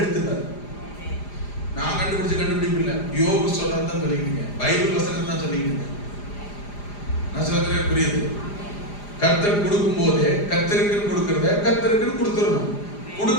நான் கண்டுபிடிக்கல. யோபு சொல்றதுதான் சொல்லிக்கிட்டீங்க, பைபிள் வசனம் தான் சொல்லிக்கிட்டீங்க. நான் சொல்றது புரியுது? கர்த்தர் கொடுக்கும் போதே கர்த்தருக்கு கொடுக்கறத கர்த்தருக்கு கொடுத்துடணும்.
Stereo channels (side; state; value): right; late; 4.9 ms